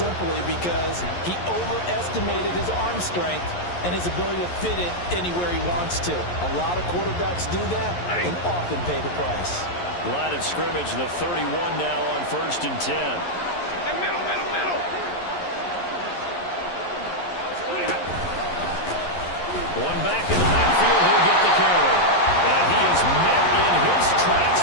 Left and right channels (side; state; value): right; late; 11 ms